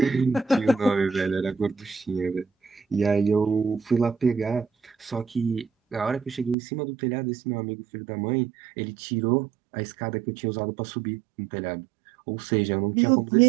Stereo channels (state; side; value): drops out; left; at 6.6 s